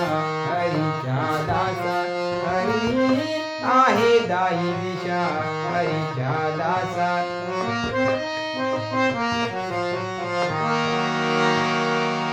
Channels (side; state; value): both; identical; correlation 1.00